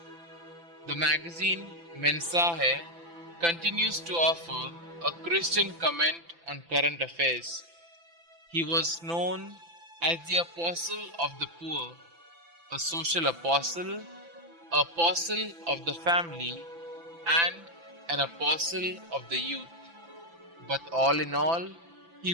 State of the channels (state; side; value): late; left; 5.9 ms